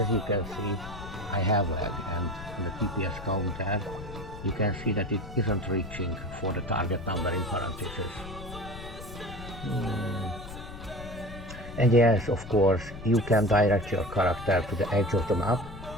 you can see, I have lag, and the TPS counter, you can see that it isn't reaching for the target number in parentheses. And yes, of course, you can direct your character to the edge of the map,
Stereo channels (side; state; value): left; noise; rumble, 12 dB below the sound